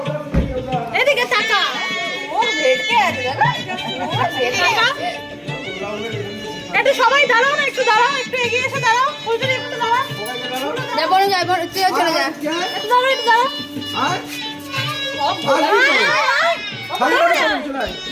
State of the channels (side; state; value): both; identical; correlation 1.00